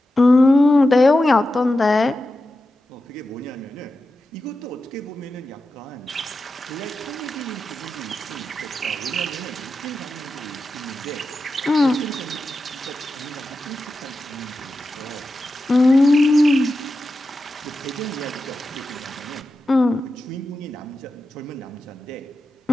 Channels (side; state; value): both; normal; correlation 0.91